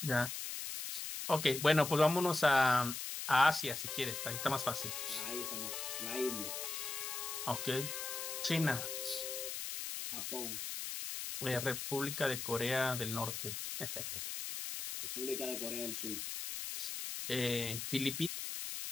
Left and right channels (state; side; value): noise; left; hiss, 5 dB below the sound